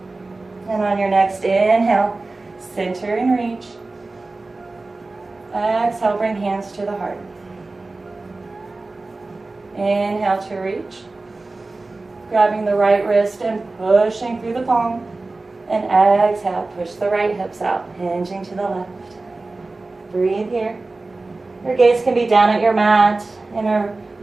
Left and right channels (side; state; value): left; quieter; 3.3 dB